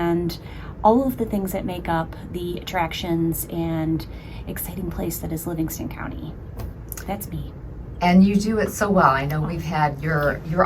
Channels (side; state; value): both; identical; correlation 1.00